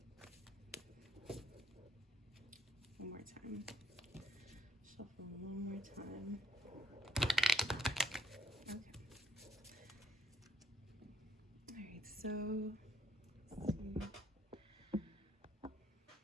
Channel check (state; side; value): normal; both; correlation 0.70